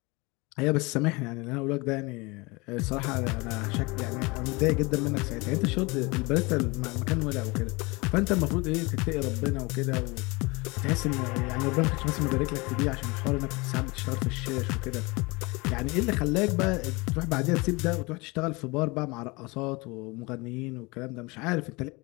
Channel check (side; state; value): right; quieter; 25.5 dB